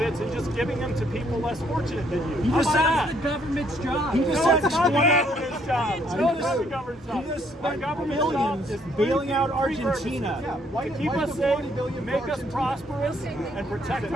and just giving them to people less fortunate than you? How Because about that's that? the government's job. He just No, said it's not the $20 government's job. No, it's not the government's job. He just Our spent government's job billions is bailing out three purposes. Argentina. To keep us safe, make us prosperous, and protect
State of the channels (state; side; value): normal; both; correlation 0.68